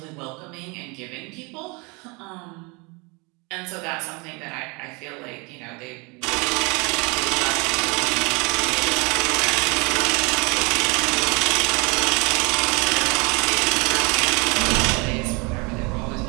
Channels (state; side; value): quieter; left; 29.2 dB